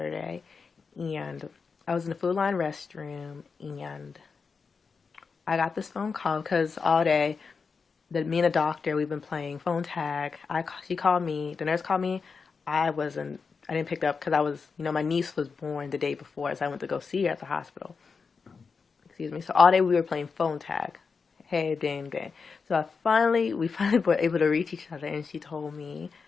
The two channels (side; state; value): right; quieter; 5.2 dB